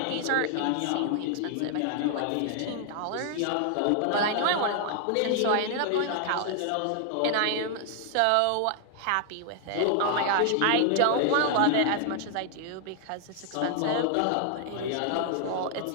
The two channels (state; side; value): different; both; correlation 0.00